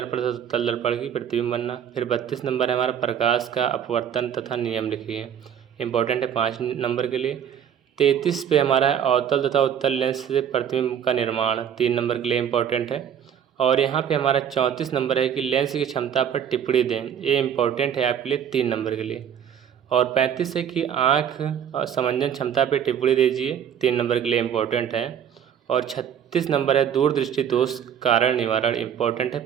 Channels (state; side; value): quieter; left; 8.8 dB